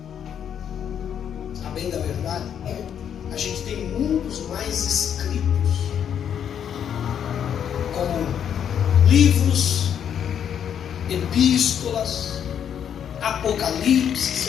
A bem da verdade, a gente tem muitos mais escritos, como livros, epístolas, Apocalipse.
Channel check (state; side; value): quieter; right; 8.8 dB